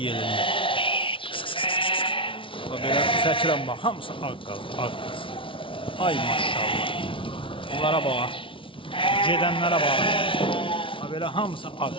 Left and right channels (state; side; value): late; right; 0.25 ms